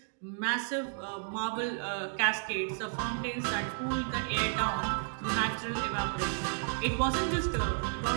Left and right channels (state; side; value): silent; left; 56 dB below the other